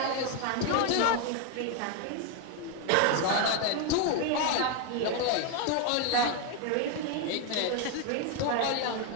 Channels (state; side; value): different; both; correlation 0.01